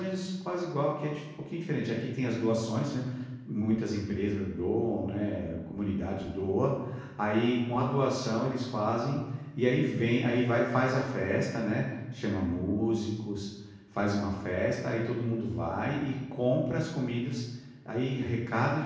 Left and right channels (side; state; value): both; identical; correlation 1.00